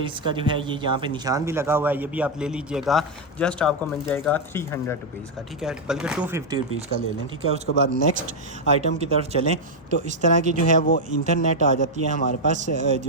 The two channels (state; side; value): normal; both; correlation 0.00